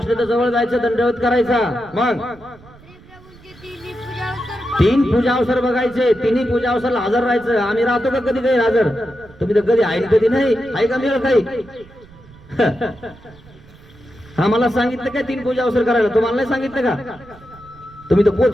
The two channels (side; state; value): right; noise; rumble, 23 dB below the sound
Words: तर जवळ जायचं, दंडवत करायचा. मग 3 पूजा अवसर बघायचे, 3ही पूजा अवसरला हजर राहायचं. आम्ही राहतो का कधी काही हजर? तुम्ही तर कधी आहे कधी नाही. आहे का मिळेल काही? आम्हाला सांगितलं काय 3 पूजा अवसर करायला? तुम्हाला नाही सांगितलं का? तुम्ही तर